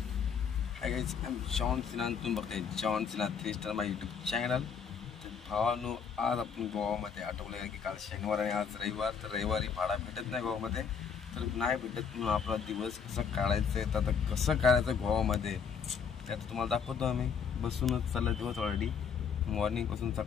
Hi guys, I am John Sinha. तुम्ही बघताय जॉन सिन्हा 3 स्टार माझ्या यूट्यूब चॅनल. तर भावानो, आज आपण गोवामध्ये आठवलं की काल शनिवार आणि आज रविवार. तर रविवारी भाडा भेटत नाही गोवामध्ये. तर नाही भेटत म्हणून आपला दिवस कसं काढायचं आहे. तर आता कसं काढायचं गोवामध्ये ते आता तुम्हाला दाखवतो. आम्ही बसूनच चालला दिवस ऑलरेडी. मॉर्निंगपासून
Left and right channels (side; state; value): right; quieter; 6.6 dB